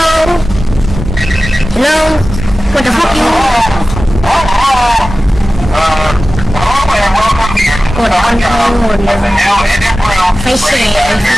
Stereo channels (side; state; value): both; normal; correlation 0.96